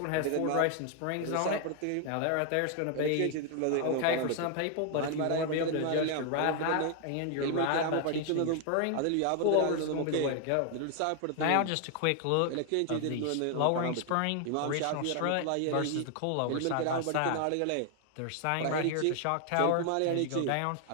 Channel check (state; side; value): different; both; correlation 0.00